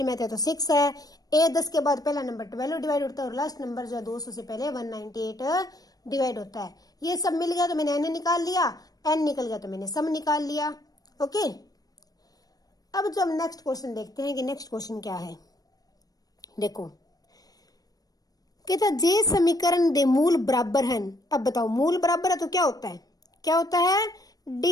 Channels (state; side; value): late; right; 0.18 ms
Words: में आता है तो 6 है। ए 10 के बाद पहला नंबर 12 डिवाइड होता है और लास्ट नंबर जो है 200 से पहले 198 डिवाइड होता है। ये सब मिल गया तो मैंने एन निकाल लिया, एन निकल गया तो मैंने सम निकाल लिया। ओके, अब जो हम नेक्स्ट क्वेश्चन देखते हैं कि नेक्स्ट क्वेश्चन क्या है। देखो कहता जे समीकरण दे मूल बराबर हैं। अब बताओ मूल बराबर है तो क्या होता है, क्या होता है,